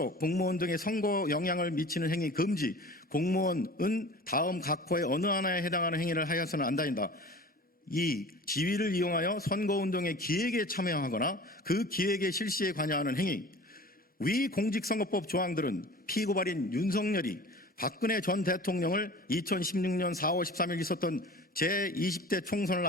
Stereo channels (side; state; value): both; normal; correlation 0.40